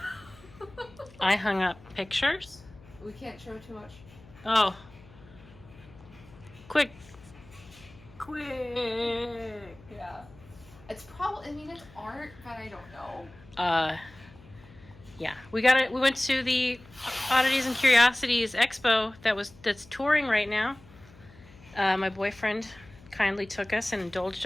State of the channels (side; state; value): left; noise; hum, 23 dB below the sound